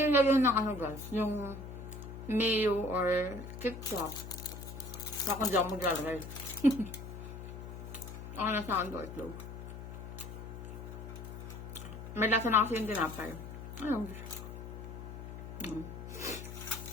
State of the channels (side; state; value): left; noise; hum, 10 dB below the sound